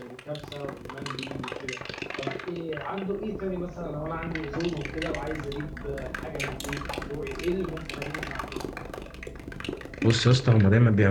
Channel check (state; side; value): identical; both; correlation 1.00